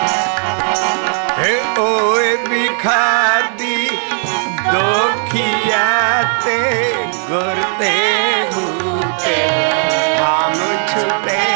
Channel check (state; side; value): silent; left; 55 dB below the other